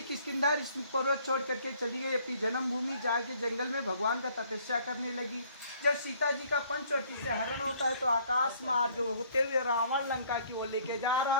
किष्किंधा ऋषि पर्वत छोड़ करके चली गई अपनी जन्मभूमि, जाके जंगल में भगवान का तपस्या करने लगी। जब सीता जी का पंचवटी से हरण होता है तो आकाश मार्ग होते हुए रावण लंका की ओर लेके जा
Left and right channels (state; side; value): inverted; both; correlation -0.60